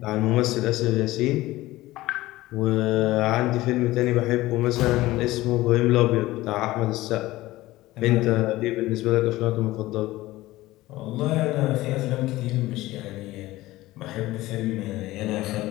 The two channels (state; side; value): quieter; right; 17.7 dB